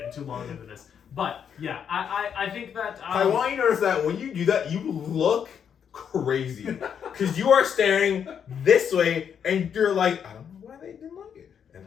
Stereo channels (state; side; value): quieter; right; 7.9 dB